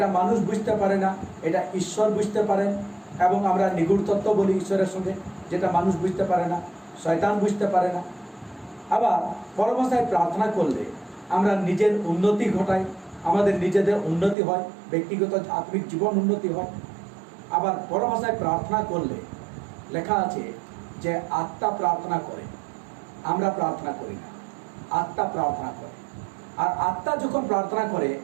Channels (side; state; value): left; drops out; at 14.4 s